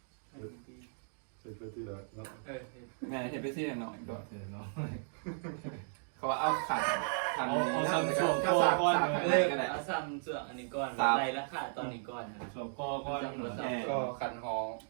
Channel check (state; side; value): silent; left; digital silence